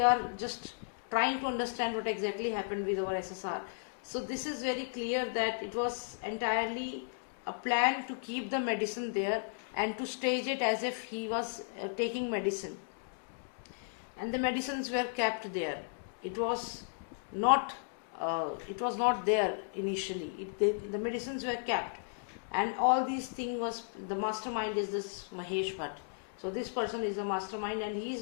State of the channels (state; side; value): silent; right; digital silence